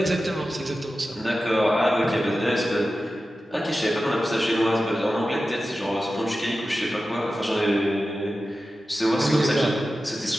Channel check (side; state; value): both; normal; correlation 0.93